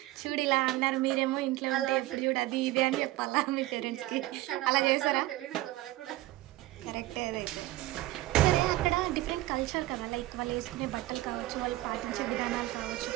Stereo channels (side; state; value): left; quieter; 17.2 dB